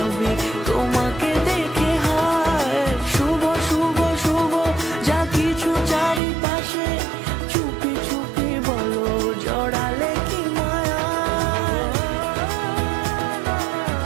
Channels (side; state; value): left; drops out; at 6.2 s